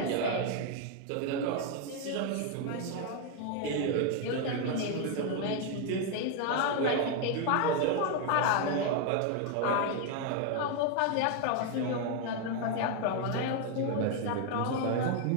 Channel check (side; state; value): both; different; correlation 0.01